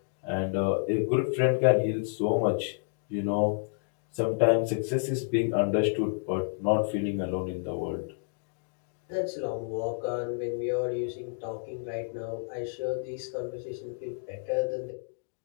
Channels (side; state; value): right; silent; digital silence